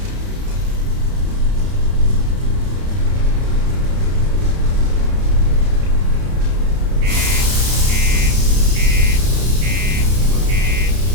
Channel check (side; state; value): left; late; 32 ms